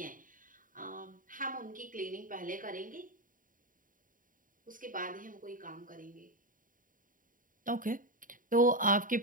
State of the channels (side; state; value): left; late; 0.39 ms